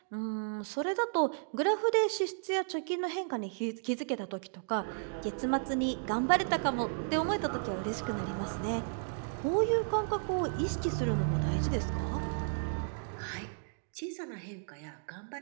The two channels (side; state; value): left; silent; digital silence